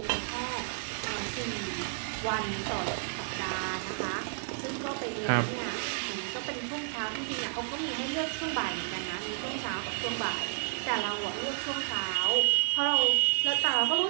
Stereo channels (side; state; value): left; silent; 56 dB below the other